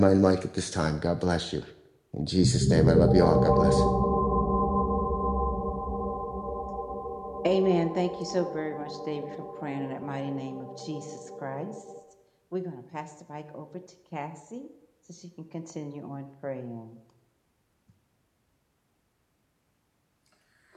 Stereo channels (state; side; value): identical; both; correlation 1.00